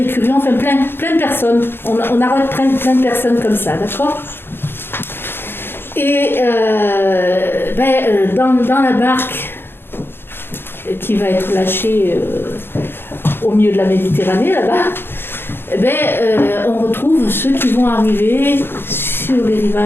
plein de personnes. On arrête plein de personnes comme ça, d'accord ? Et dans la barque qui va être lâchée au milieu de la Méditerranée, là-bas, on retrouve ceux qui vont arriver sur les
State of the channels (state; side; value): late; right; 0.10 ms